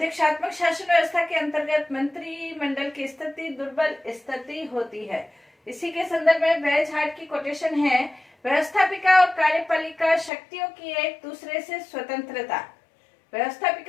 शासन व्यवस्था के अंतर्गत मंत्रिमंडल की स्थिति दुर्बल स्थिति होती है। इसी के संदर्भ में वेज हार्ट की कोटेशन है, व्यवस्थापिका और कार्यपालिका शक्तियों की एक दूसरे से स्वतंत्रता।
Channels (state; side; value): drops out; right; at 10.3 s